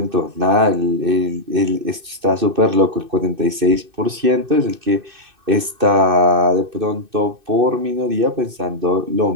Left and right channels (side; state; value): left; late; 2.6 ms